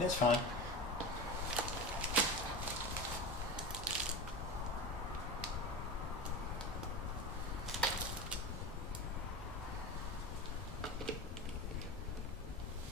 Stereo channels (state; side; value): normal; both; correlation 0.26